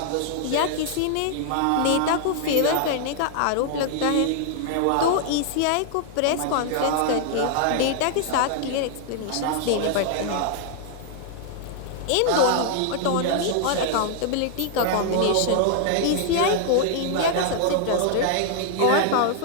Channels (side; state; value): both; different; correlation 0.00